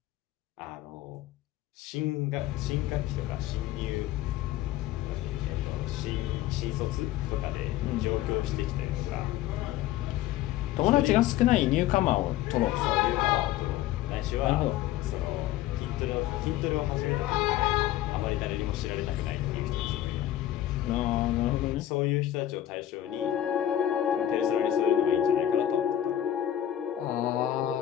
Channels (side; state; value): right; quieter; 12.7 dB